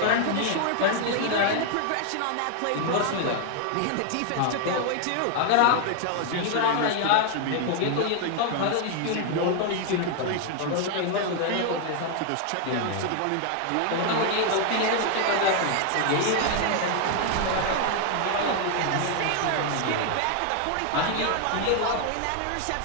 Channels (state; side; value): different; both; correlation 0.00